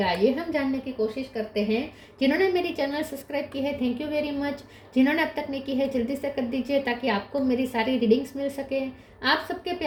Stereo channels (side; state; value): both; identical; correlation 1.00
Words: ये हम जानने की कोशिश करते हैं। जिन्होंने मेरी चैनल सब्सक्राइब की है, थैंक यू वेरी मच। जिन्होंने अब तक नहीं की है, जल्दी से कर दीजिए ताकि आपको मेरी सारी रीडिंग्स मिल सके। आप सबके